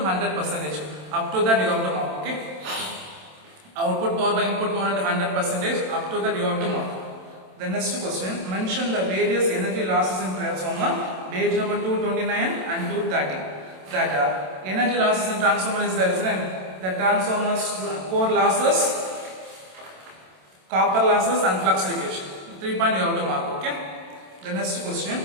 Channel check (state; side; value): late; left; 27 ms